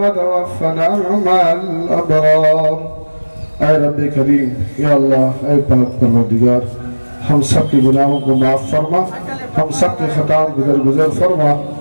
مع الابرار. اے رب کریم، یا اللہ، اے پاک پروردگار، ہم سب کے گناہوں کو معاف فرما، ہم سب کے خطاؤں کو درگزر فرما،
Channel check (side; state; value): both; inverted; correlation -1.00